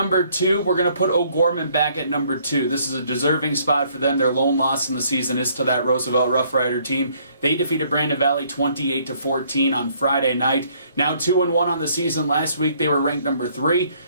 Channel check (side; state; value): both; inverted; correlation -0.64